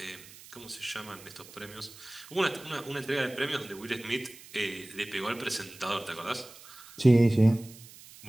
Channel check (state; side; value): noise; right; hiss, 19 dB below the sound